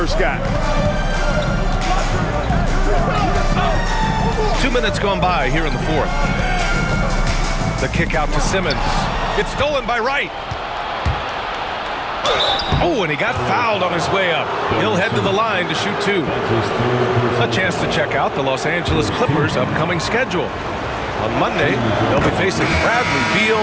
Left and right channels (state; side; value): identical; both; correlation 1.00